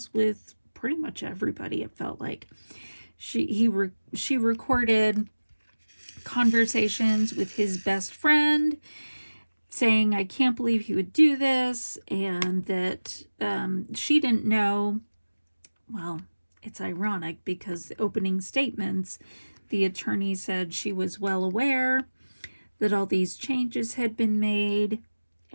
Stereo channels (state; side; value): inverted; both; correlation -1.00